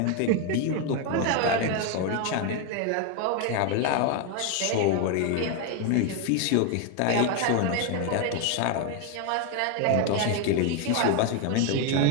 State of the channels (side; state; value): both; different; correlation 0.01